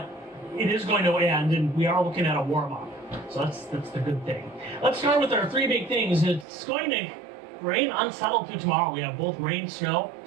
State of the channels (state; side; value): drops out; left; at 6.5 s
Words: it is going to end, and we are looking at a warm-up. So that's the good thing. Let's start with our three big things. It's going to rain unsettled through tomorrow. We have both rain, snow,